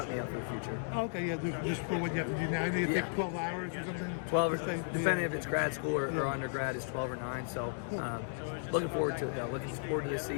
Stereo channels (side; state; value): right; silent; digital silence